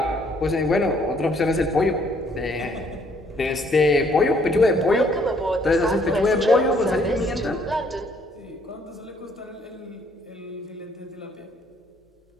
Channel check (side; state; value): both; normal; correlation 0.65